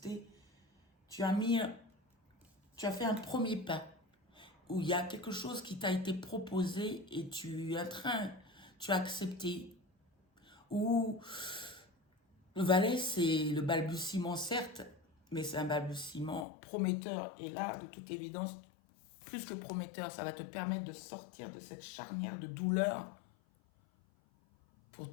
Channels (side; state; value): right; drops out; at 16.4 s